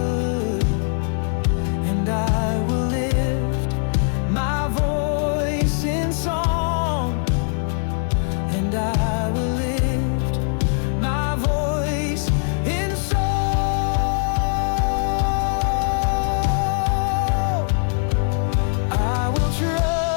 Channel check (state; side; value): silent; right; digital silence